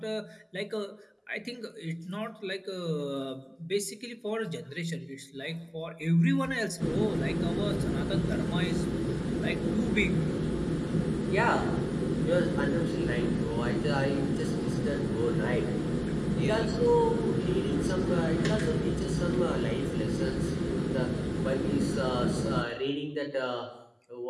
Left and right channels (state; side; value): identical; both; correlation 1.00